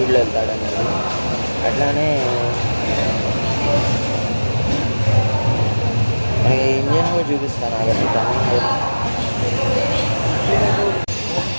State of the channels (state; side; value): inverted; both; correlation -1.00